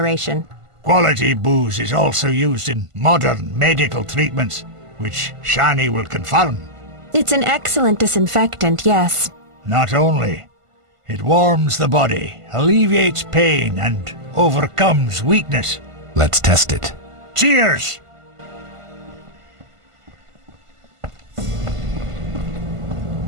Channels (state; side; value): late; left; 1.5 ms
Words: Quality booze is also used in modern medical treatments, which Shani will confirm. It's an excellent disinfectant, yes. Not only. It warms the body, alleviates pain, and overcomes weakness. Let's test it. Cheers!